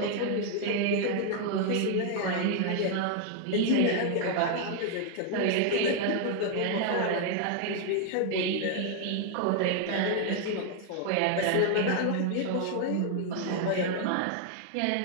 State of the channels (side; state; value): both; different; correlation 0.00